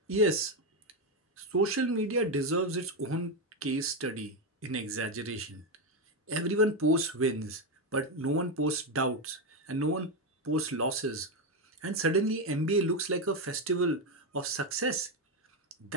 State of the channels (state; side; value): normal; both; correlation 0.08